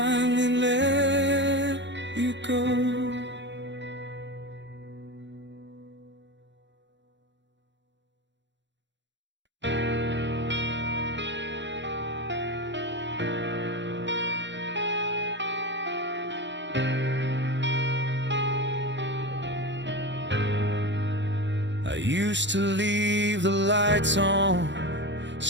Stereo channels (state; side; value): late; left; 0.53 ms